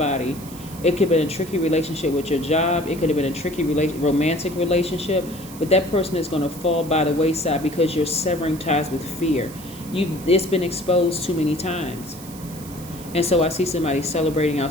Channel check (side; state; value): right; noise; hiss, 17 dB below the sound